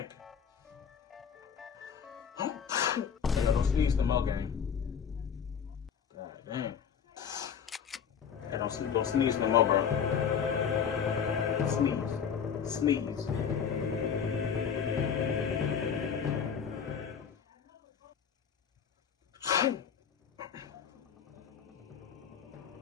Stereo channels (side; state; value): right; quieter; 7.3 dB